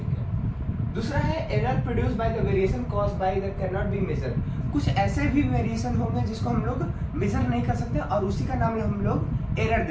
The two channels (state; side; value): identical; both; correlation 1.00